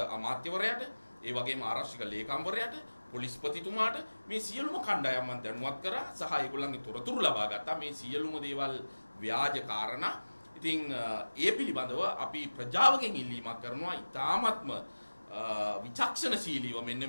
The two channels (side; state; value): both; inverted; correlation -1.00